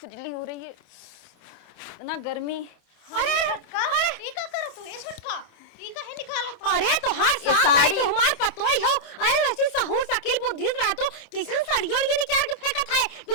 खुजली हो रही है, इतना गर्मी। अरे अरे तोहार साथ आई तो हमार पतोई हो। अरे वैसे सहूर सकिल बुद्धि रहा तो किसान साड़ियों ये निकाल के फेंकत है।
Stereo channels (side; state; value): right; late; 28 ms